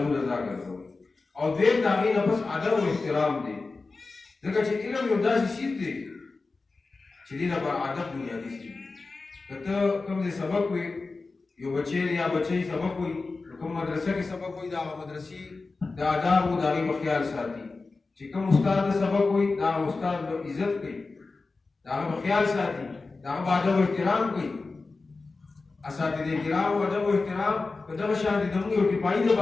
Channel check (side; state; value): right; quieter; 3.8 dB